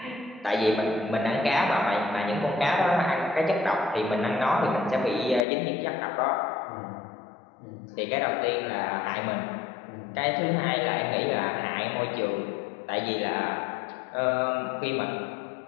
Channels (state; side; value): drops out; right; at 5.5 s